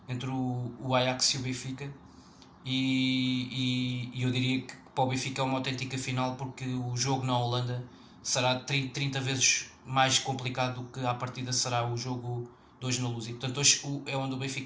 entre o Ajax e o Benfica e eu diria que para o Benfica é uma autêntica final, porque o jogo na Holanda será 30 vezes mais complicado do que à partida será o jogo de hoje na Luz. E portanto hoje é onde o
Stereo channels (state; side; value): identical; both; correlation 1.00